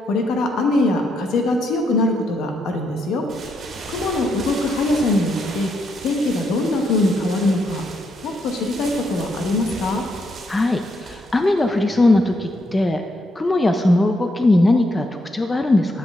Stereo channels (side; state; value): both; normal; correlation 0.78